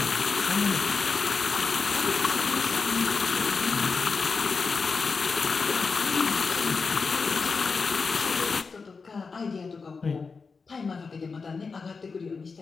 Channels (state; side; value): quieter; right; 4.8 dB